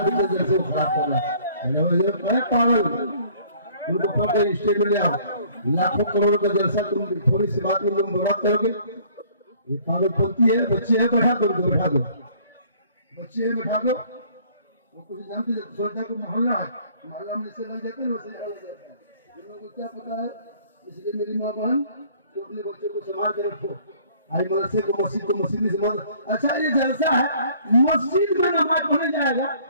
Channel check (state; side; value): inverted; both; correlation -0.56